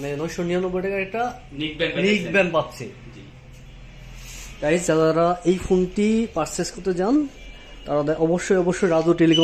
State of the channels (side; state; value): both; identical; correlation 1.00